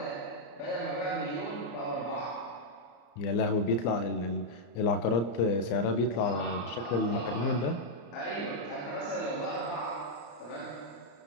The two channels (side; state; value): right; late; 34 ms